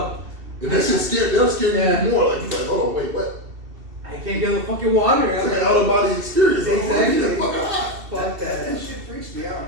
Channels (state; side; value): late; left; 2.7 ms